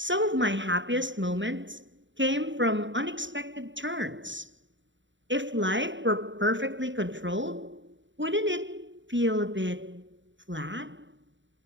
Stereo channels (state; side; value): late; left; 0.54 ms